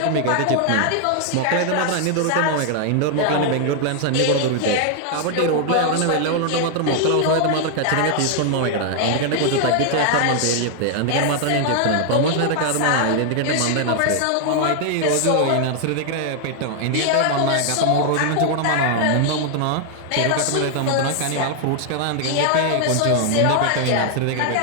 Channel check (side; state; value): both; different; correlation 0.00